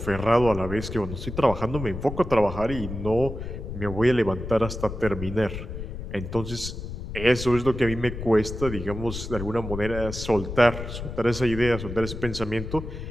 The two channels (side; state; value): left; noise; rumble, 8 dB below the sound